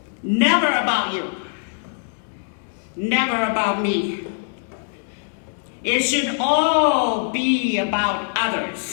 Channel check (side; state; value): right; silent; digital silence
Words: Never about you. Never about me. It should all be about